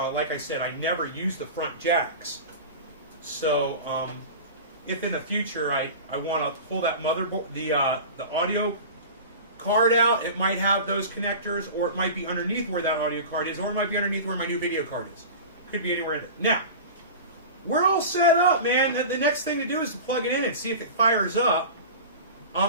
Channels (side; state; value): both; inverted; correlation -0.33